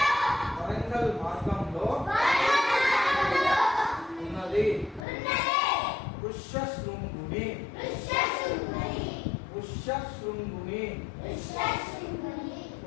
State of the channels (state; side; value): drops out; right; at 5.1 s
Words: వరంగల్ మార్గంలో ఉన్నది. వృషశృంగుని